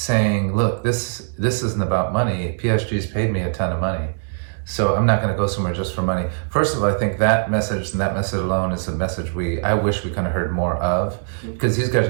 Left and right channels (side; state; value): left; silent; digital silence